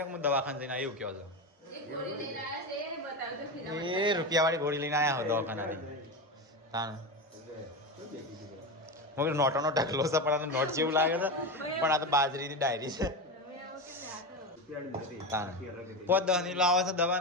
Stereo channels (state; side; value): normal; both; correlation 0.19